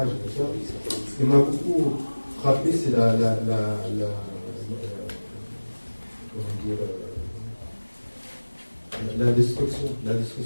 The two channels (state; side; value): inverted; both; correlation -1.00